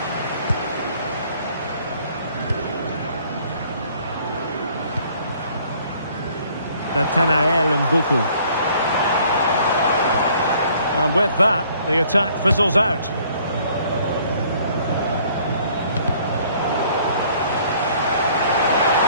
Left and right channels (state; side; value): inverted; both; correlation -0.59